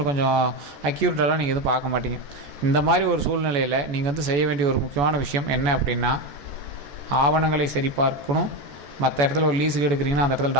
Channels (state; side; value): late; left; 14 ms